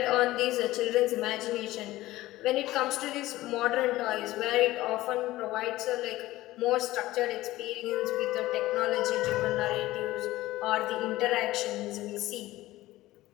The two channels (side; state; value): right; quieter; 16.9 dB